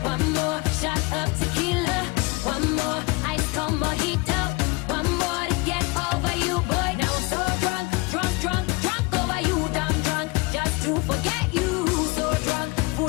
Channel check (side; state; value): right; quieter; 25.7 dB